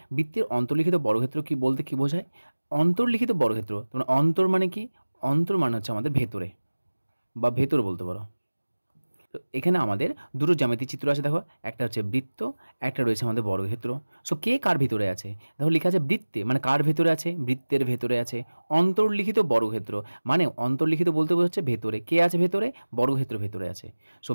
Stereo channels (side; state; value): both; inverted; correlation -1.00